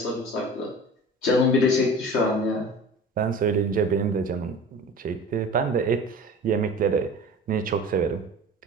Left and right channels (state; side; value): normal; both; correlation 0.38